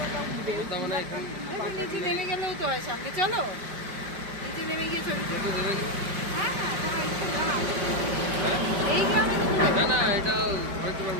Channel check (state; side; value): late; left; 5.1 ms